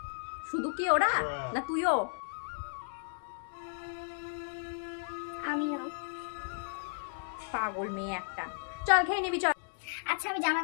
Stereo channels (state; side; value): silent; right; digital silence